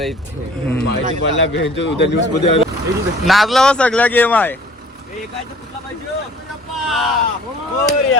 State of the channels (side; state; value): both; normal; correlation 0.51